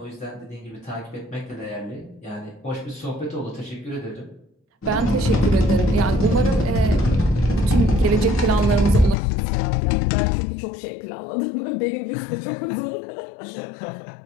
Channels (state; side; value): drops out; right; at 9.2 s